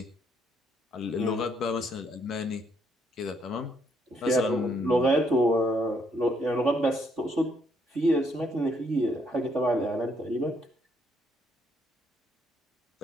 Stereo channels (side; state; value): both; normal; correlation 0.71